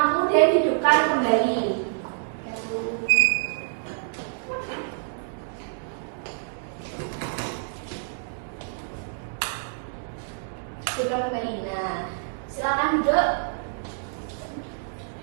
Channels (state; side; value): silent; left; digital silence